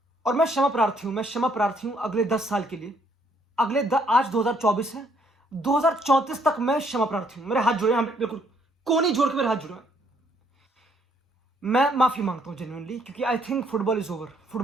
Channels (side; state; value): both; normal; correlation 0.68